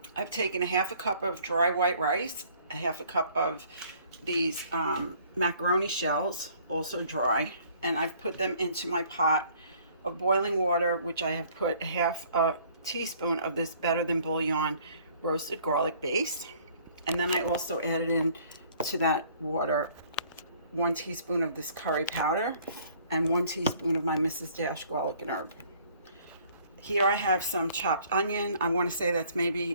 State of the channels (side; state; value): both; inverted; correlation -0.58